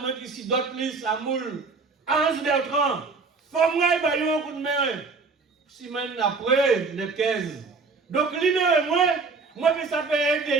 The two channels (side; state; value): left; quieter; 4.3 dB